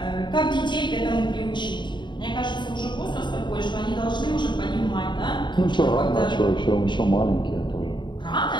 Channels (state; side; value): late; right; 0.22 ms